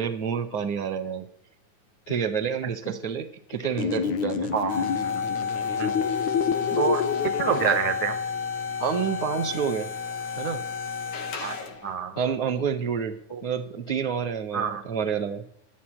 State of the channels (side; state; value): right; late; 9.5 ms